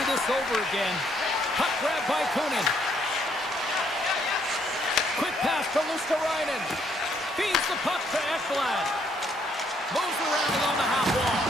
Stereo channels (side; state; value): both; normal; correlation 0.70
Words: this over again. Puck grab by Kunin. Quick pass to Luosterainen. Feeds the puck to Ekblad. Moves around along the half wall.